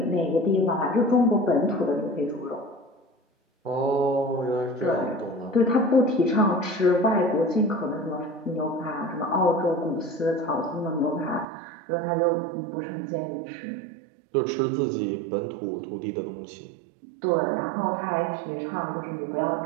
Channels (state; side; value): drops out; left; at 11.5 s